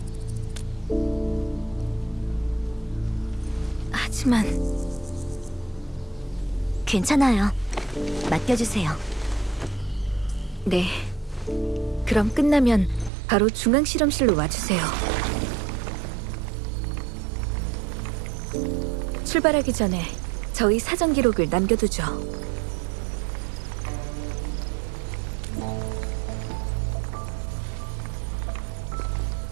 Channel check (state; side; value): drops out; left; at 13.1 s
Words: 하지만 괜찮아요. 맡겨주세요. 네. 그럼 끝나면 바로 중앙 실험실로 와주세요. 출발하기 전에 저희 사전 기록을 남겨두죠.